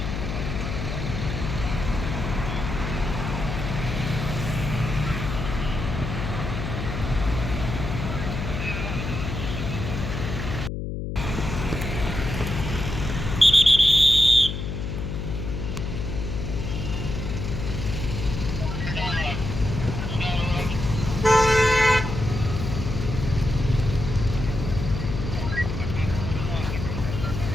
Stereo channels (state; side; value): noise; left; hum, 4 dB below the sound